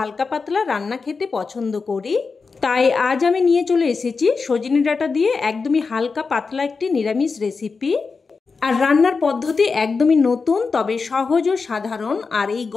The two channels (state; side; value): quieter; right; 4.7 dB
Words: পাতলা রান্না খেতে পছন্দ করি। তাই আজ আমি নিয়ে চলে এসেছি সজনে ডাঁটা দিয়ে একদমই হালকা পাতলা একটি নিরামিষ রেসিপি। আর রান্নার পদ্ধতি একদমই নতুন, তবে সহজ ও সাধারণ। আর এই